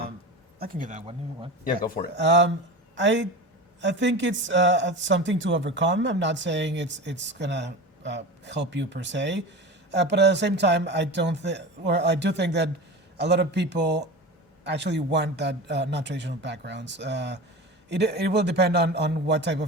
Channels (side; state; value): both; normal; correlation 0.29